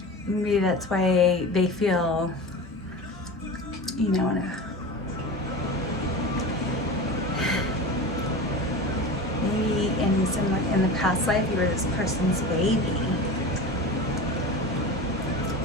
Maybe that's why they feel, maybe in the past life you were this person's baby.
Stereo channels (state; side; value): normal; both; correlation 0.31